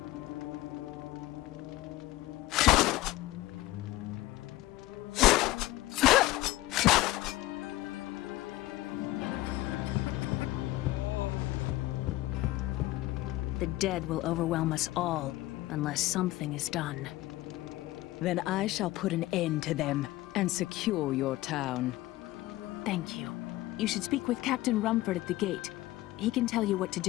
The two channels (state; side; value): quieter; right; 17.4 dB